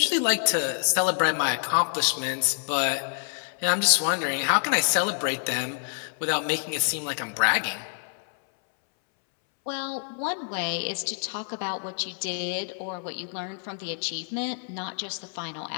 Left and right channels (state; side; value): silent; right; 60 dB below the other